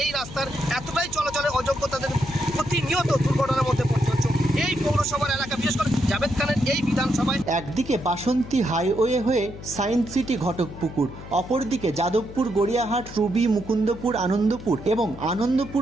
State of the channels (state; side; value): noise; left; hum, 14 dB below the sound